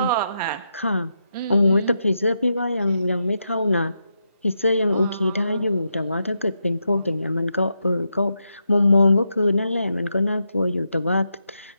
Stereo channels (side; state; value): both; inverted; correlation -0.84